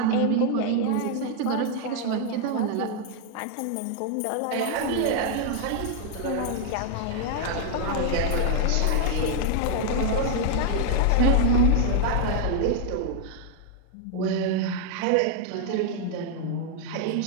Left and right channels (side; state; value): both; different; correlation 0.00